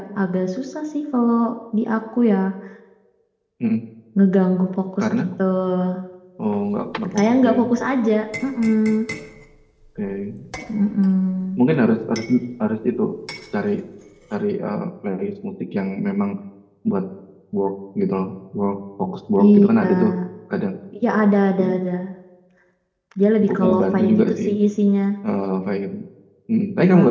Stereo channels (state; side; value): identical; both; correlation 1.00